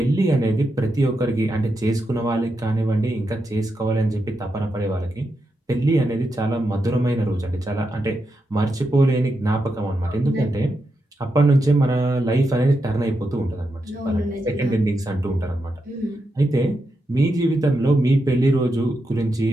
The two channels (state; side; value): normal; both; correlation 0.86